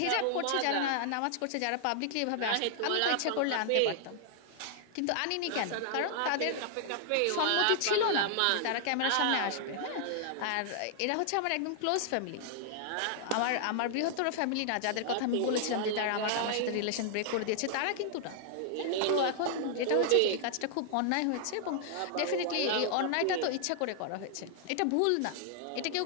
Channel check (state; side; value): different; both; correlation 0.00